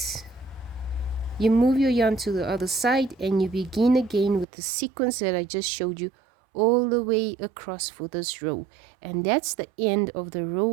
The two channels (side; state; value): left; drops out; at 4.5 s